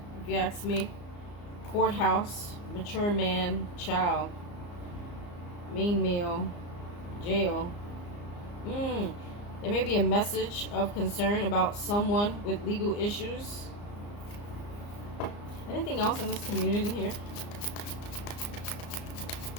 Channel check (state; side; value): late; right; 34 ms